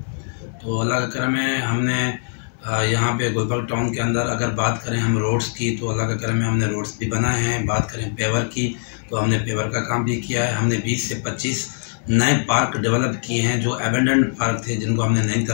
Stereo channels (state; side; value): silent; right; 64 dB below the other